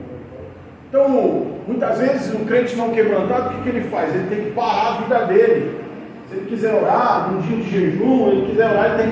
Então, muitas vezes, um crente não quebrantado, o que ele faz? Ele tem que parar a vida dele. Se ele quiser orar, num dia de jejum, ele quiser orar, ele tem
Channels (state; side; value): identical; both; correlation 1.00